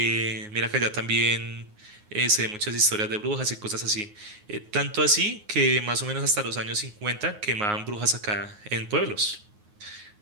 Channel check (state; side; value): late; left; 9.5 ms